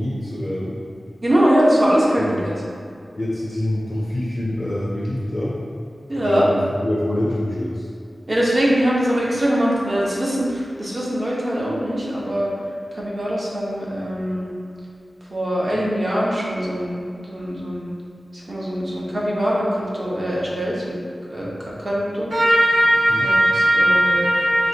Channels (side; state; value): both; normal; correlation 0.96